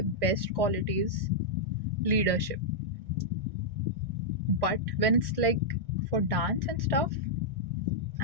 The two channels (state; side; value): late; left; 1.6 ms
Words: best qualities, leadership. But when it's like for dance and stuff,